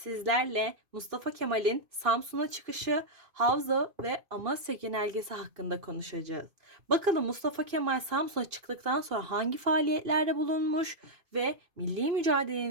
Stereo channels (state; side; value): late; left; 2.5 ms